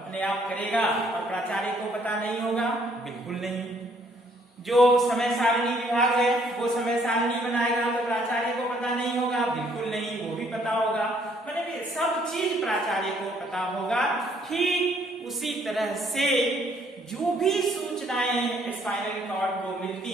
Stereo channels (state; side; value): normal; both; correlation 0.65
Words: आप करेगा और प्राचार्य को पता नहीं होगा? बिल्कुल नहीं। जो समय सारणी विभाग है वो समय सारणी बनाएगा तो प्राचार्य को पता नहीं होगा? बिल्कुल नहीं, वो भी पता होगा। मतलब सब चीज प्राचार्य को पता होगा। ठीक उसी तरह से जो भी सूचनाएं स्पाइनल कॉर्ड को मिलती